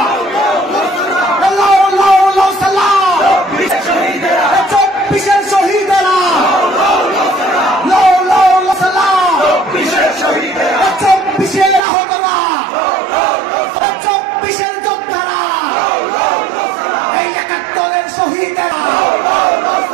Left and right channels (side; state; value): left; drops out; at 11.8 s